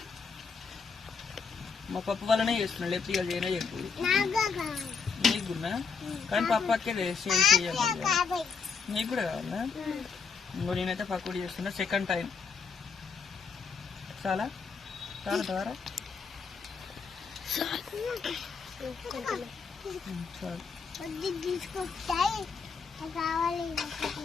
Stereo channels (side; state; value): right; quieter; 5.5 dB